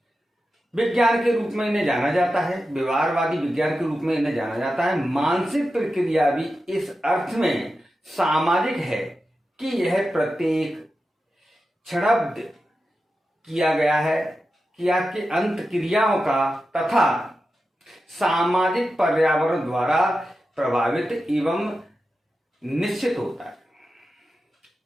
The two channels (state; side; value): normal; both; correlation 0.91